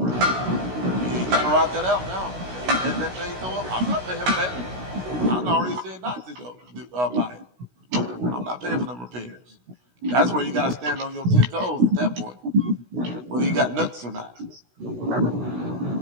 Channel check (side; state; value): left; late; 16 ms